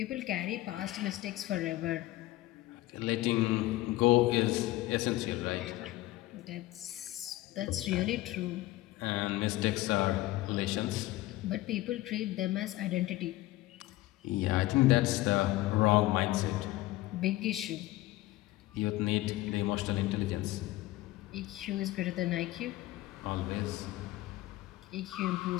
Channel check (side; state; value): right; quieter; 17.3 dB